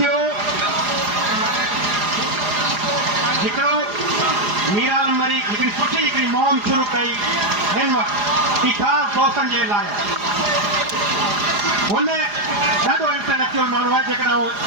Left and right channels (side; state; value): left; late; 4.9 ms